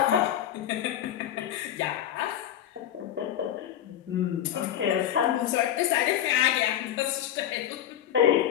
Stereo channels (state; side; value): quieter; right; 11.0 dB